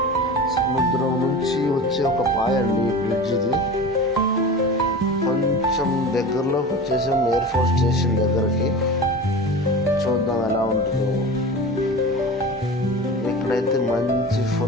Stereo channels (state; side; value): normal; both; correlation 0.32